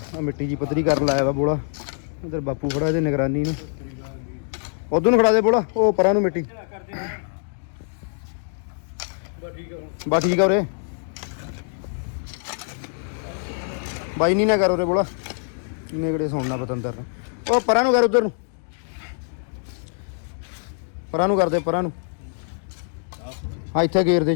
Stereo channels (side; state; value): right; silent; digital silence